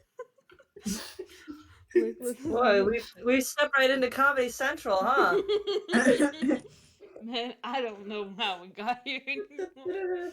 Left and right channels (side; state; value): both; identical; correlation 1.00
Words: Boy, we stepped right into Comedy Central, huh? Man, I don't know how we got here anymore.